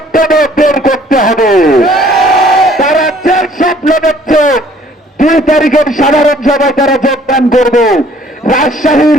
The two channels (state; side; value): normal; both; correlation 0.58